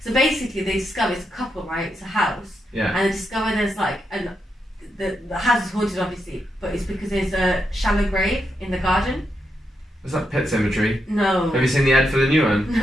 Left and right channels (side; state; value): both; normal; correlation 0.83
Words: So basically, they discover it's a couple, right? It's a house. Yeah. And they discover there's and the house is haunted, obviously, but it's because there's a shallow grave in the garden. Was that Pet Sematary? No. Have you seen the ad for the new one?